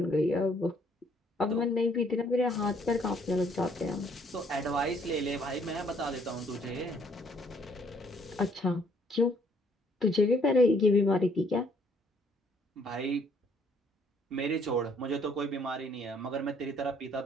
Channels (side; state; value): both; normal; correlation 0.64